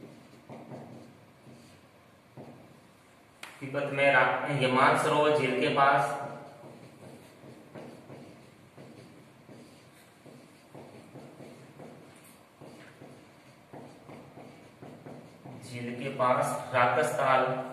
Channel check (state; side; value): identical; both; correlation 1.00